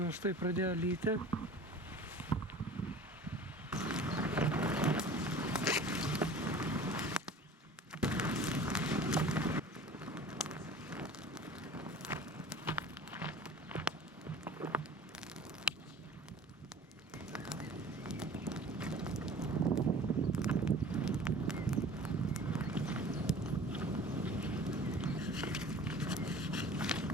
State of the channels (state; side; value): normal; both; correlation 0.43